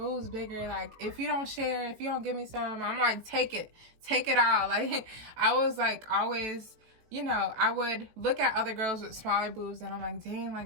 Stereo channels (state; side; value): late; left; 18 ms